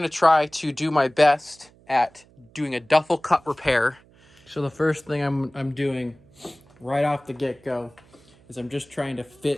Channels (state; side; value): noise; right; hum, 28 dB below the sound